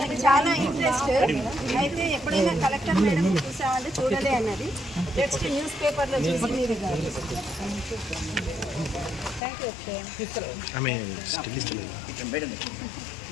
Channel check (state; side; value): drops out; right; at 9.4 s